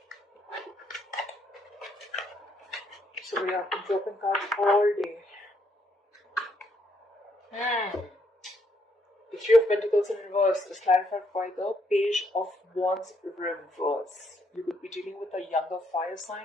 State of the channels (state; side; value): normal; both; correlation 0.72